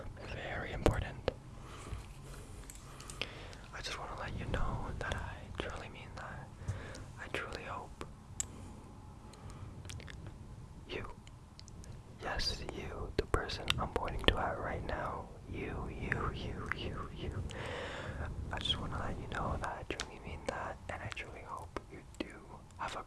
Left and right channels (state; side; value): identical; both; correlation 1.00